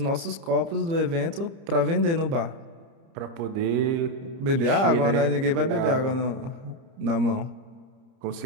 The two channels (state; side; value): late; left; 30 ms